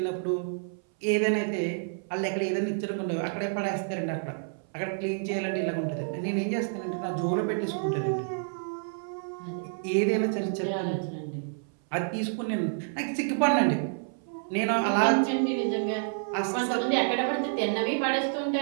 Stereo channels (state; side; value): silent; left; 59 dB below the other